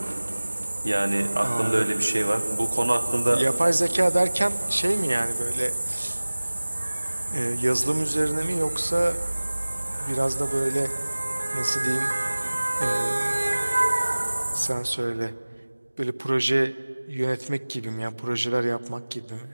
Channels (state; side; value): inverted; both; correlation -1.00